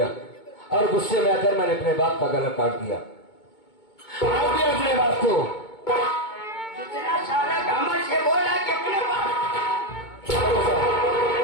और गुस्से में आकर मैंने अपने बाप का गला काट दिया। अपने बाप को कितना सारा घमंड से बोला कि अपने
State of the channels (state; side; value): late; right; 2.2 ms